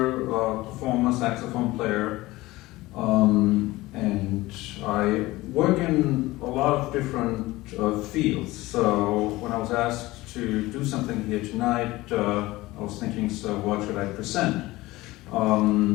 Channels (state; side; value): quieter; right; 19.1 dB